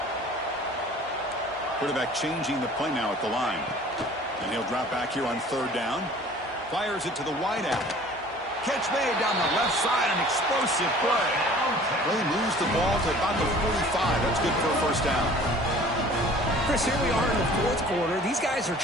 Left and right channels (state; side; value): normal; both; correlation 0.48